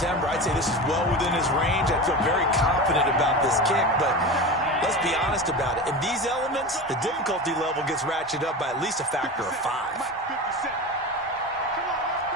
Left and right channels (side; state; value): both; normal; correlation 0.27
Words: I'd say this is well within his range. I feel very confident about this kick, but let's be honest about it. In these elements, the difficulty level gets ratcheted up by at least a factor of 5.